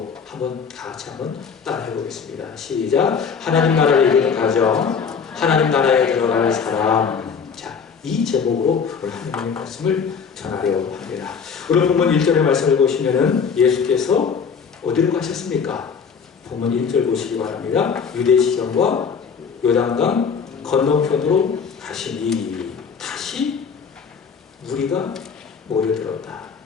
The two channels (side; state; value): right; quieter; 6.2 dB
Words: 다 같이 한번 따라해 보겠습니다. 시작. 하나님 나라에 이르는 가정, 하나님 나라에 들어갈 사람. 자, 이 제목으로 오늘 하나님의 말씀을 전하려고 합니다. 오늘 본문 1절의 말씀을 보시면은 예수께서 어디로 가셨습니까? 본문 1절 보시기 바랍니다. 유대시경과 요단강 건너편으로 가시니 다시 무리가 모여들었다.